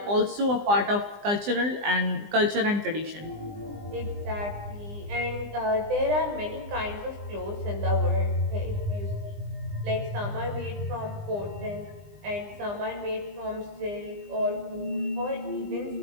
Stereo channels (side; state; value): left; late; 20 ms